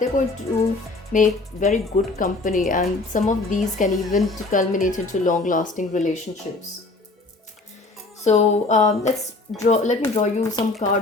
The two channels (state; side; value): quieter; right; 3.3 dB